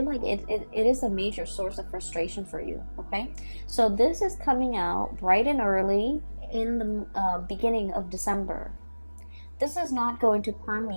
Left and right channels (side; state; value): both; inverted; correlation -1.00